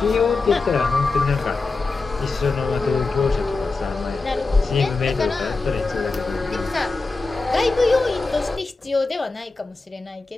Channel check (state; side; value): quieter; right; 3.8 dB